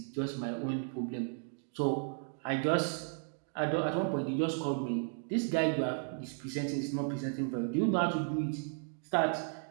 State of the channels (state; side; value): silent; left; 55 dB below the other